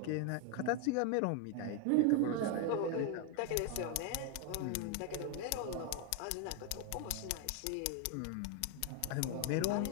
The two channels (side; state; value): both; different; correlation 0.01